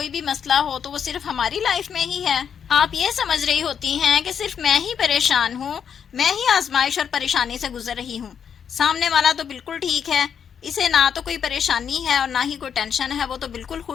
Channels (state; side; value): quieter; right; 7.7 dB